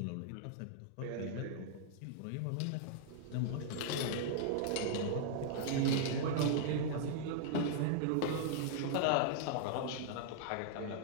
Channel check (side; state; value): both; different; correlation -0.01